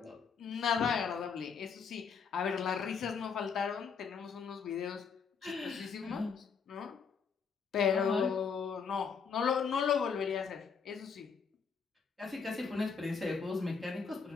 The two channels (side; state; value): right; quieter; 5.9 dB